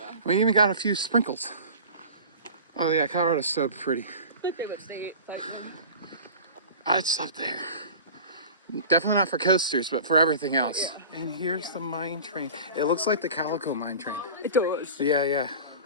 We even got a few sprinkles. Oh yeah, Colorado's so pretty. My favorite state. I'd stop there. Definitely not for coasters, but for everything else. And here's the mine train. It looks like the Calico mine train. It does. Yeah.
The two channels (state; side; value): inverted; both; correlation -0.38